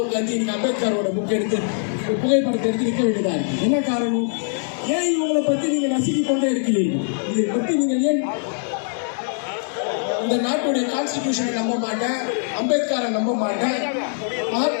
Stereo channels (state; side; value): silent; right; digital silence